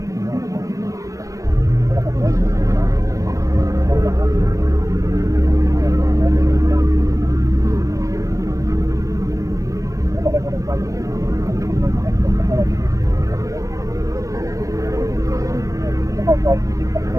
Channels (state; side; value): late; left; 0.16 ms